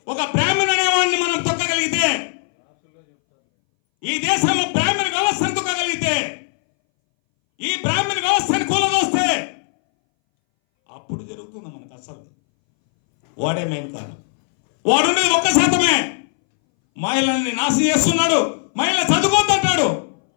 ఒక బ్రాహ్మణ అనేవాడిని మనం తొక్కగలిగితే, ఈ దేశంలో బ్రాహ్మణ వ్యవస్థను తొక్కగలిగితే, ఈ బ్రాహ్మణ వ్యవస్థను కూలదోస్తే అప్పుడు జరుగుతుంది మనకు అసలు. వాడే మెయిన్ కారణం. వాడున్నది 1%. మహిళల్ని నాశనం చేస్తున్నాడు. మహిళ చదువుకోద్దంటాడు.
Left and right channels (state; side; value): silent; right; 63 dB below the other